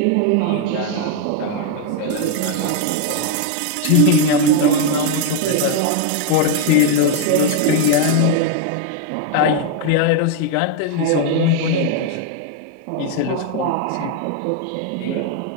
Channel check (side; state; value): both; different; correlation 0.01